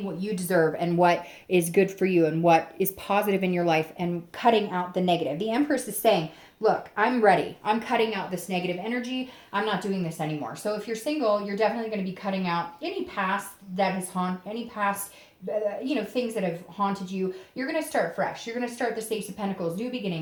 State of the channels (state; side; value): identical; both; correlation 1.00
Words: what you deserve and what is good for you and what is positive in your life and cutting out the negative. The Empress is saying, look, I'm ready. I'm cutting out this negative energy. I'm not doing this anymore. So if you're single, you're definitely going to be cutting out any past that has any past things that have haunted you. You're going to start fresh. You're going to start the Ace of Pentacles, new